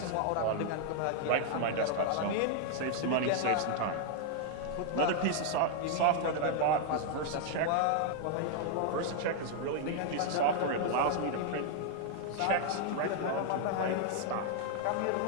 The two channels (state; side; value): different; both; correlation 0.00